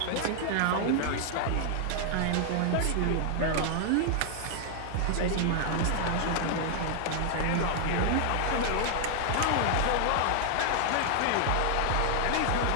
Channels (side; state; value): both; different; correlation 0.00